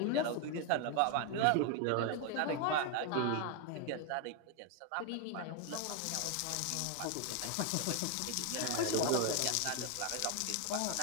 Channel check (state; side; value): different; both; correlation 0.01